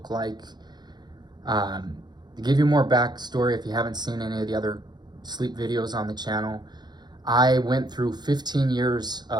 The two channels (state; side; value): late; left; 0.21 ms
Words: like. To give you more backstory, if you haven't seen any of the other sleep videos on the channel, I went through 15 years